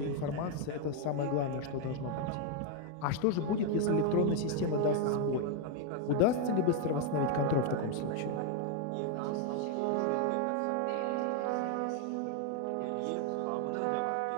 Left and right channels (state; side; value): different; both; correlation 0.01